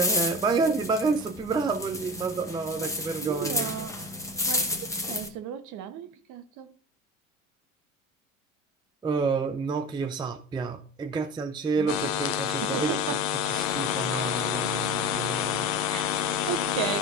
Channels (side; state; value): both; normal; correlation 0.31